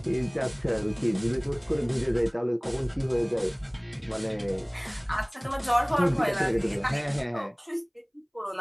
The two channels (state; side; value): identical; both; correlation 1.00